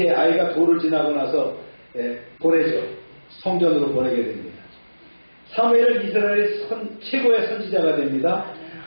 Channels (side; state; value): both; inverted; correlation -1.00